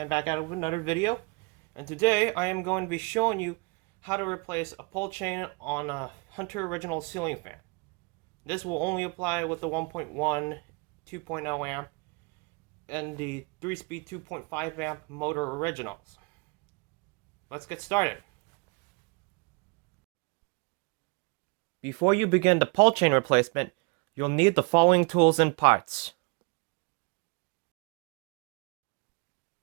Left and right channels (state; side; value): quieter; left; 30.6 dB